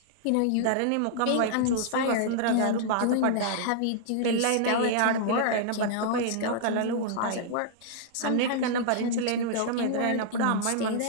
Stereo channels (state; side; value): different; both; correlation -0.01